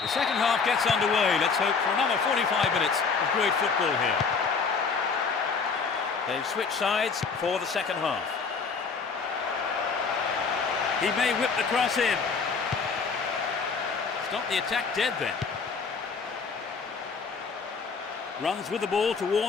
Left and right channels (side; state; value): right; quieter; 5.2 dB